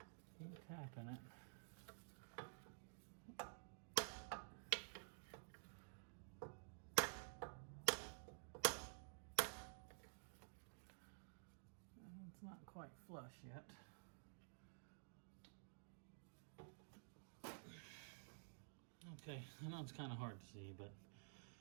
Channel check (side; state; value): left; silent; digital silence